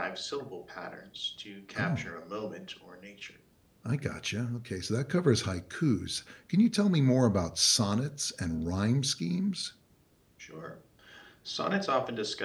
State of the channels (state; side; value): identical; both; correlation 1.00